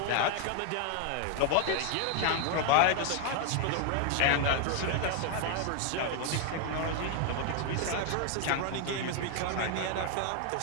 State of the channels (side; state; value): both; different; correlation 0.01